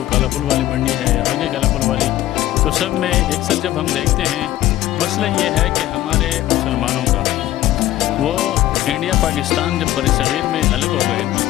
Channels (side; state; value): right; quieter; 14.5 dB